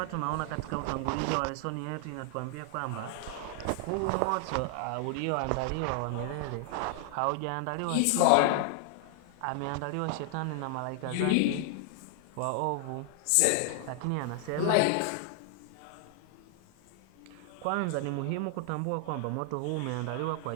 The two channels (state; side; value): different; both; correlation 0.00